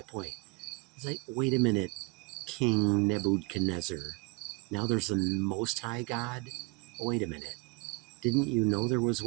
point. It's like, wait a minute, King Nebuchadnezzar. Now there's a Most High God? Wait a minute. Didn't you know there was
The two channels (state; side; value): quieter; left; 27.3 dB